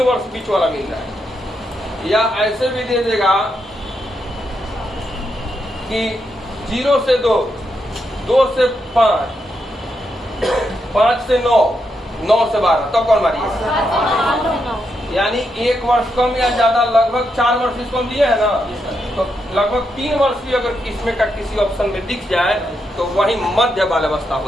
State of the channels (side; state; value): both; normal; correlation 0.82